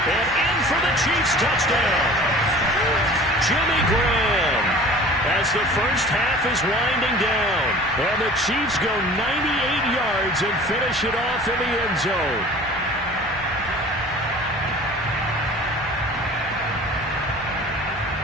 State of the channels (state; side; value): normal; both; correlation 0.44